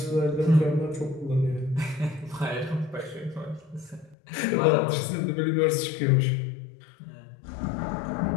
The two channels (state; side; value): drops out; right; at 4.2 s